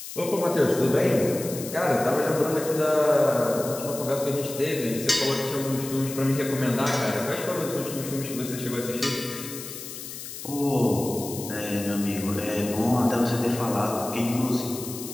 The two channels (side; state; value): left; noise; hiss, 10 dB below the sound